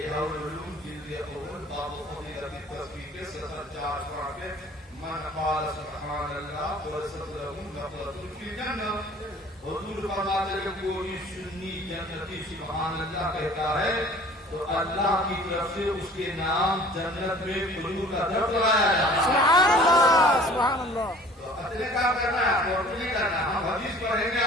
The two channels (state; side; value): normal; both; correlation 0.49